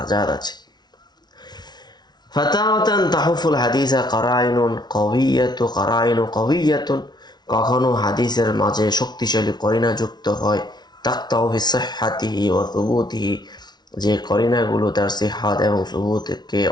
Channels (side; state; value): right; late; 0.20 ms